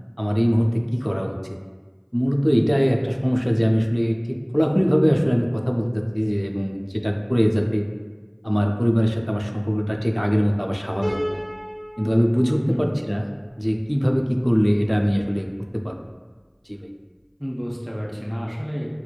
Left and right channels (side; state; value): both; identical; correlation 1.00